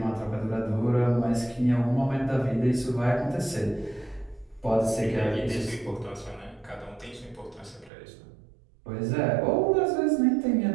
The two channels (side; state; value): left; drops out; at 7.9 s